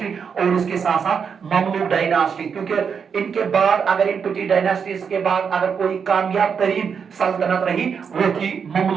और उसके साथ साथ ममलूक डायनास्टी, क्योंकि इनके बाद अगर इन पिटी डायनास्टीज के बाद अगर कोई कामयाब तरीन सल्तनत रही वो थी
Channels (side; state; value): left; quieter; 6.5 dB